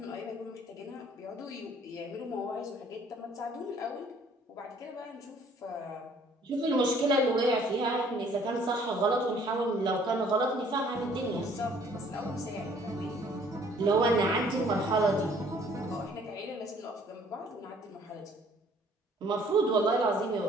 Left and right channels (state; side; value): normal; both; correlation 0.58